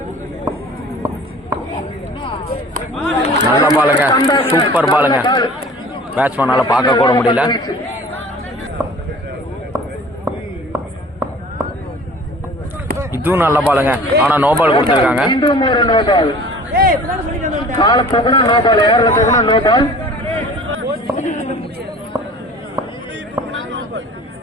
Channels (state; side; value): normal; both; correlation 0.45